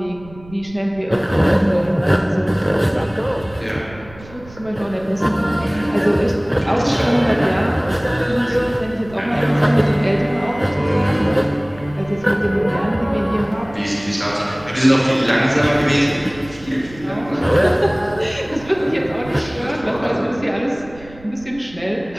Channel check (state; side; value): noise; right; rumble, 20 dB below the sound